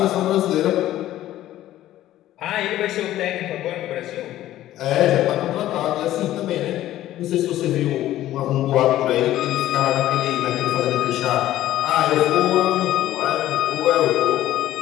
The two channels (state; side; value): quieter; right; 13.8 dB